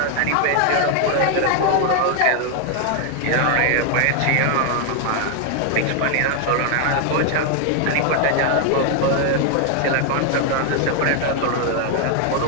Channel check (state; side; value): different; both; correlation 0.00